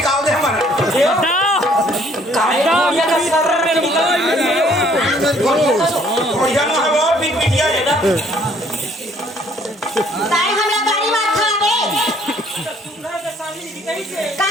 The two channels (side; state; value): both; normal; correlation 0.61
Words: दे हमारा काय ये का सर में निकल बढ़िया ना है वो पीट पिटिया है ना ताई हमरा गाड़ी मार खावे का